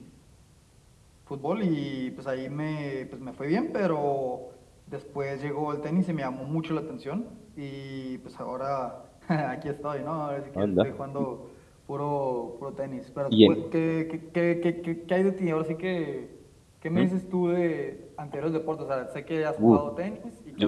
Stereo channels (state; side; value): identical; both; correlation 1.00